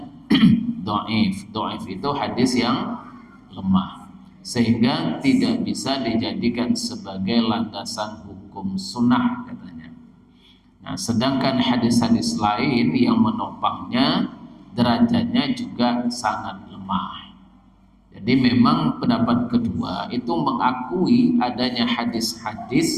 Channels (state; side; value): identical; both; correlation 1.00